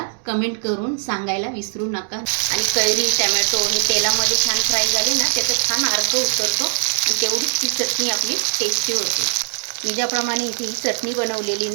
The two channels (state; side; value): silent; left; digital silence